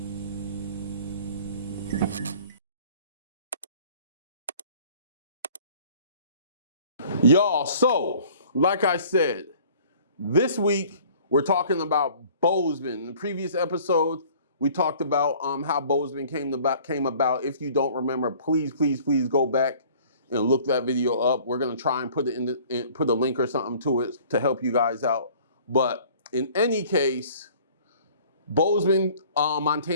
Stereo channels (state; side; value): inverted; both; correlation -0.51